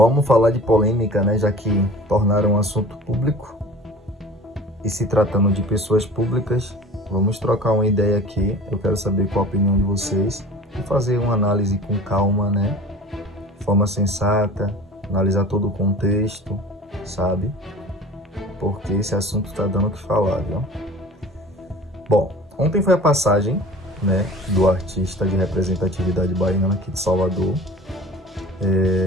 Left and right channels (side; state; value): both; normal; correlation 0.42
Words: falar de polêmica, né? Já que tornaram um assunto público e se tratando de pessoas públicas, vamos trocar uma ideia aqui. Eu quero saber qual a opinião de vocês e fazer uma análise com calma, né? De forma sensata, analisar todo o contexto, sabe? Porque esse assunto está dando o que falar, viu? Bom, ontem foi a passagem, né, do artista de representatividade baiana aqui de Salvador,